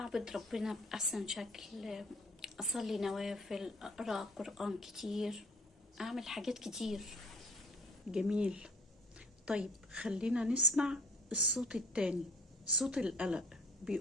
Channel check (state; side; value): normal; both; correlation 0.53